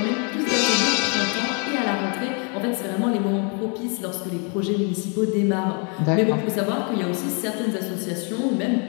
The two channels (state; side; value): quieter; right; 37.8 dB